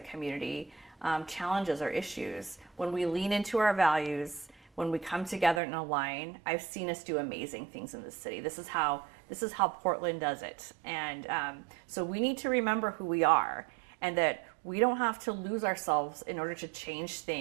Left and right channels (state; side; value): drops out; left; at 5.6 s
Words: community challenges or issues, when we lean into our values, when we come together and align, I've seen us do amazing things in this city. This is how Portland does it. And so we need to remember who we are, and that we don't have to lose ourselves in order to change